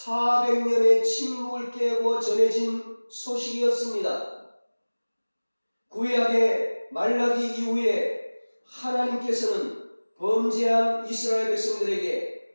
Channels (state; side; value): inverted; both; correlation -1.00